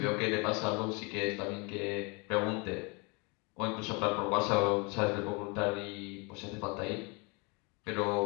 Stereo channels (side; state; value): right; quieter; 30.1 dB